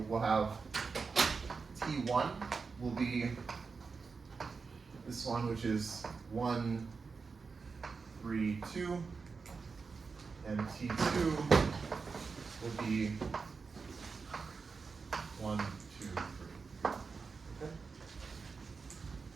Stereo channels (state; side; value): quieter; left; 4.8 dB